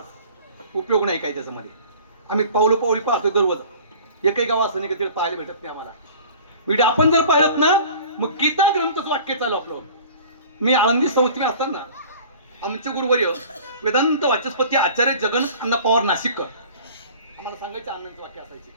उपयोग नाही काय त्याच्यामध्ये. आम्ही पावली पाहतोय दररोज. एकही गाव असं नाही की तिथे पाहायला भेटत नाही आम्हाला. म्हणजे आपण जर पाहिलं ना मग गीता ग्रंथच वाक्य चालू आपलं. मी आळंदी संस्थेत असताना आमचे गुरुवर्य वेदांत वाचस्पती आचार्य जगन्नाथ अण्णा पवार नाशिककर आम्हाला सांगायचे आनंद वाक्य असायचे.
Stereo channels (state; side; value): inverted; both; correlation -0.45